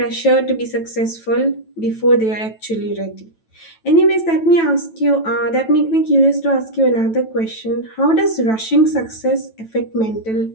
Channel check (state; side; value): late; right; 9.1 ms